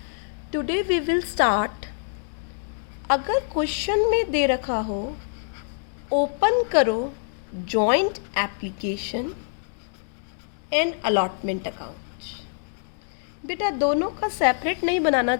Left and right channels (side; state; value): right; silent; digital silence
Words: Today we will start. अगर क्वेश्चन में दे रखा हो ओपन करो joint application and allotment account. बेटा, दोनों का सेपरेट नहीं बनाना